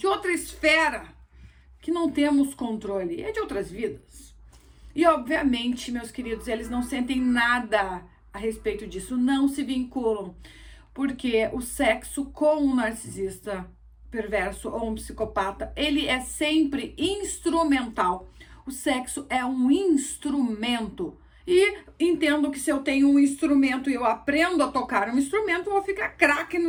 esfera, que não temos controle, é de outras vidas. E obviamente, meus queridos, eles não sentem nada a respeito disso, não se vinculam, porque o sexo com um narcisista perverso ou um psicopata, ele é sempre instrumental. O sexo é um instrumento E entendo que se eu tenho um instrumento e eu aprendo a tocar um instrumento, eu vou ficar craque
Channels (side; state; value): both; identical; correlation 1.00